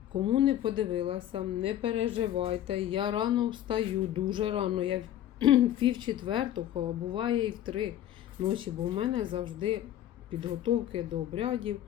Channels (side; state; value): right; quieter; 11.9 dB